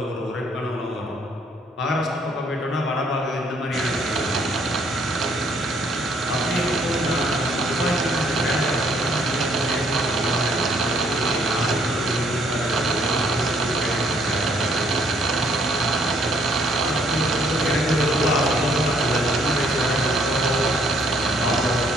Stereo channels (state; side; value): normal; both; correlation 0.66